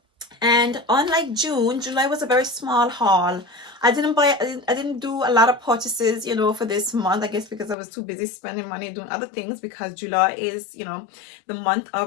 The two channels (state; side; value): drops out; right; at 7.8 s